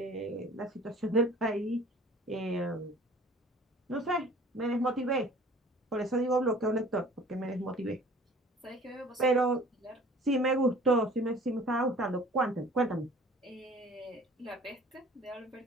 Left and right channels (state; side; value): normal; both; correlation 0.48